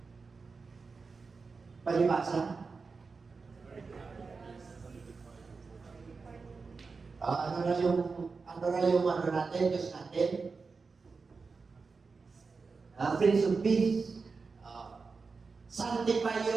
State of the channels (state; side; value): quieter; left; 4.6 dB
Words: Palibasa. Ano na yung natin, Diyos natin? Prince of Peace. Sanctify